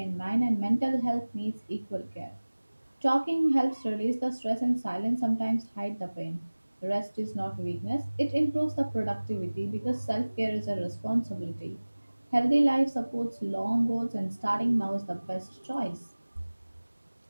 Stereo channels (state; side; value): inverted; both; correlation -1.00